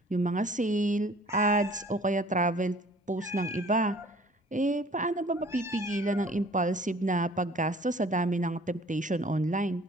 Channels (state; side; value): normal; both; correlation 0.52